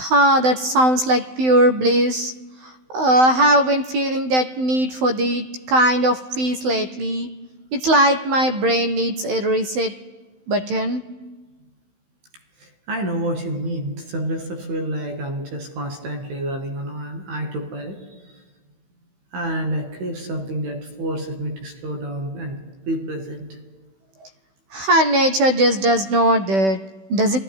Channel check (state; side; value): late; left; 16 ms